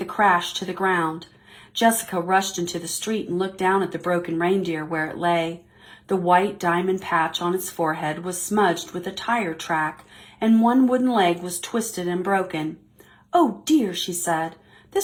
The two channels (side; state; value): both; identical; correlation 1.00